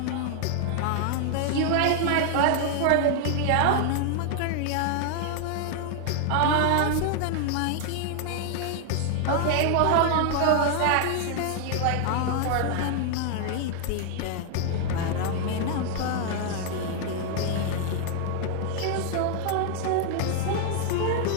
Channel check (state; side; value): different; both; correlation 0.00